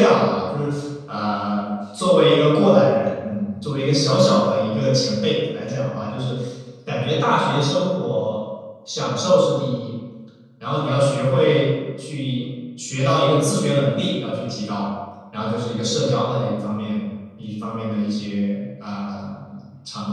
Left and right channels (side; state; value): both; identical; correlation 1.00